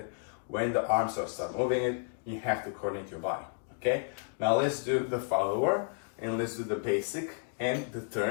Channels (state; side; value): silent; right; digital silence